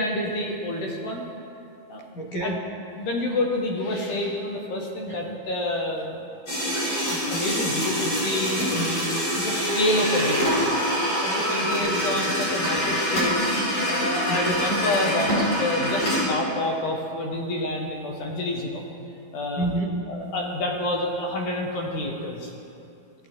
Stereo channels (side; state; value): right; late; 13 ms